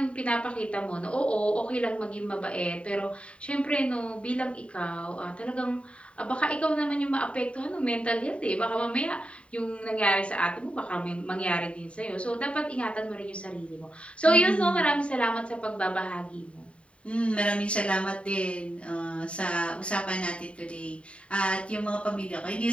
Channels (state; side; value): late; right; 0.061 ms